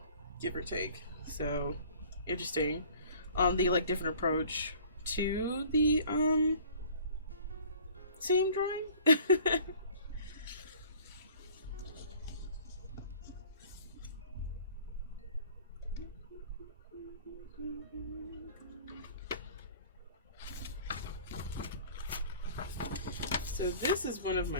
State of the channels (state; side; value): inverted; both; correlation -0.49